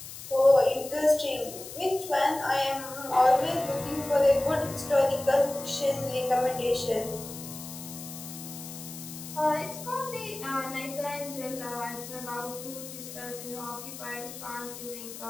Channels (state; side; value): noise; left; hiss, 12 dB below the sound